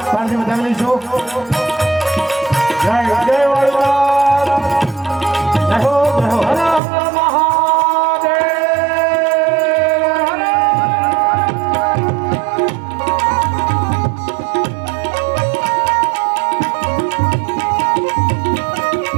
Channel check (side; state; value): left; drops out; at 6.8 s